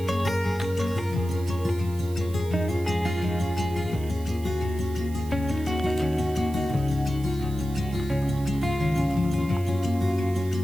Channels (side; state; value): right; noise; hiss, 20 dB below the sound